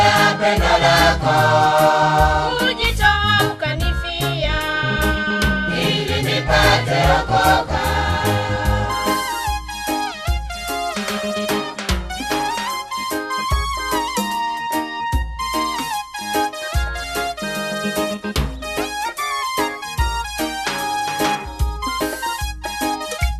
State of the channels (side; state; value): both; identical; correlation 1.00